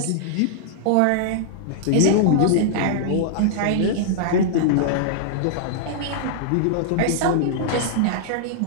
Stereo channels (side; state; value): both; different; correlation -0.01